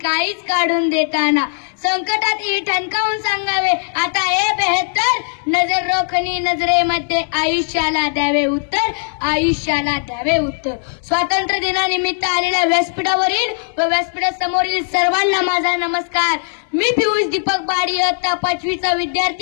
काहीच काढून देताना संकटात ठणकावून सांगावे आता हे बेहतर नजर रोखणी नजरेमध्ये आयुष्याला द्यावे उत्तर आयुष्याला द्यावे उत्तर स्वातंत्र्य दिनानिमित्त आलेल्या व्यासपीठावरील व व्यासपीठासमोरील सर्वांना माझा नमस्कार मी पियुष दीपक बाडी इयत्ता 5वीचा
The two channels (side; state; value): right; silent; digital silence